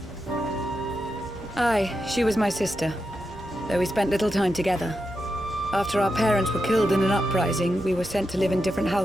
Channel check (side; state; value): both; normal; correlation 0.87